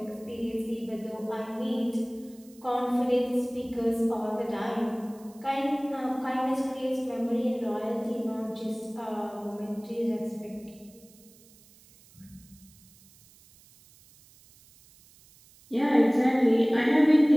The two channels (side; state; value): right; noise; hiss, 26 dB below the sound